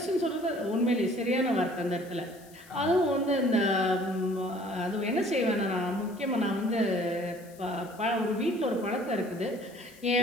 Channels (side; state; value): left; noise; hiss, 24 dB below the sound